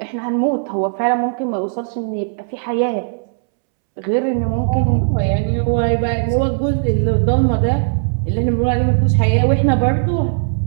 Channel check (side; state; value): left; silent; 68 dB below the other